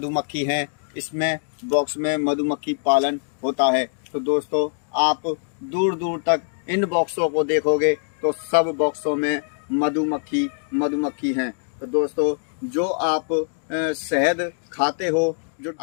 हैं। इसमें बॉक्स में मधुमक्खी पालन होता है। तो दोस्तों, आप दूर दूर तक इन बॉक्सों को देखोगे तो सब बॉक्सों में मधुमक्खी हैं। तो दोस्तों, जो आप शहद खाते हो, जो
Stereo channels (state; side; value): silent; right; digital silence